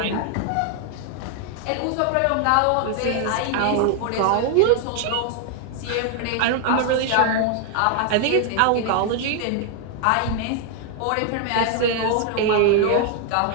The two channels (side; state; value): both; different; correlation 0.00